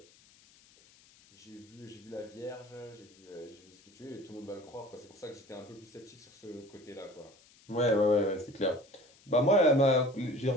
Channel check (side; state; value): left; noise; hiss, 27 dB below the sound